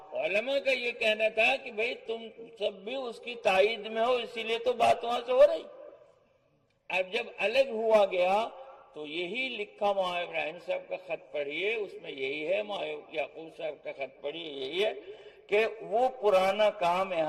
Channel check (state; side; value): identical; both; correlation 1.00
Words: علماء کا یہ کہنا تھا کہ بھئی تم سب بھی اس کی تائید میں ہو، اسی لیے تو بات وہاں سے ہو رہی۔ اب جب الگ ہوا گیا تو یہی لکھا مولانا ابراہیم صاحب کا خط پڑھیے، اس میں یہی ہے، مولانا یعقوب صاحب کا خط پڑھیے، یہی ہے کہ وہ پرانا کام